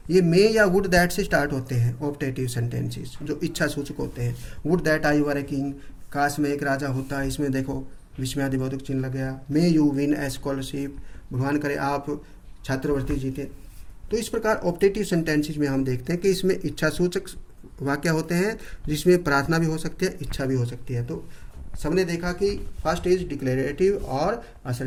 ये मे या वुड दैट से स्टार्ट होते हैं ऑप्टेटिव सेंटेंसेस जो इच्छा सूचक होते हैं। Would that I were a king, काश में एक राजा होता, इसमें देखो विस्मयादिबोधक चिन्ह लग गया। May you win A scholarship, भगवान करे आप छात्रवृत्ति जीते। तो इस प्रकार ऑप्टेटिव सेंटेंसेस में हम देखते हैं कि इसमें इच्छा सूचक वाक्य होते हैं जिसमें प्रार्थना भी हो सकती है, इच्छा भी हो सकती है। तो सबने देखा कि फर्स्ट इज डिक्लेरेटिव और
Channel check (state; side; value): identical; both; correlation 1.00